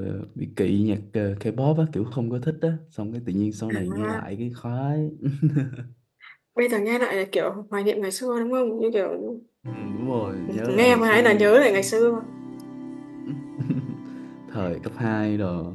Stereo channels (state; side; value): identical; both; correlation 1.00